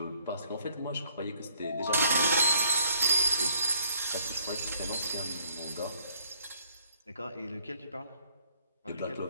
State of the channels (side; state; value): both; inverted; correlation -0.64